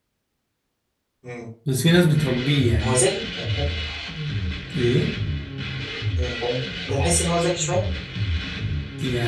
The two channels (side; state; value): both; identical; correlation 1.00